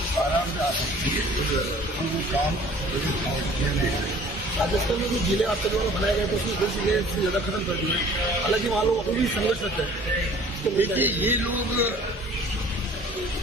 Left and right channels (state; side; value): normal; both; correlation 0.51